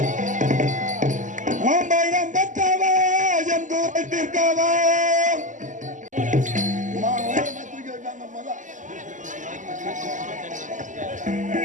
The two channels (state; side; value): late; left; 0.37 ms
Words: மாம்பழம் பெற்றவா என் தூரத்திற்கவா